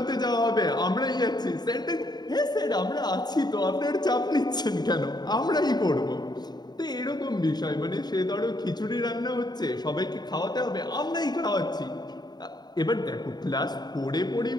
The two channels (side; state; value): right; late; 0.20 ms